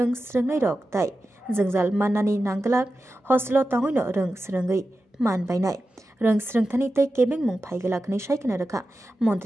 Sringai Rok Tai Jengzal Manani Nanglak Hostelo Tangoino Rong Sringai Man Bainai Rong Sringthani Tei Kebeng Mung Phaigalak ni Shaikana Rakha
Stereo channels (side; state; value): both; normal; correlation 0.92